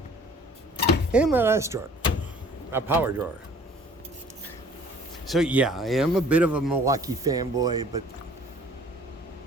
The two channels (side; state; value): both; normal; correlation 0.52